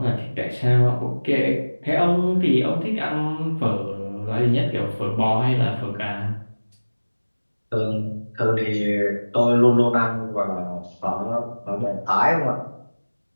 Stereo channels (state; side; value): inverted; both; correlation -1.00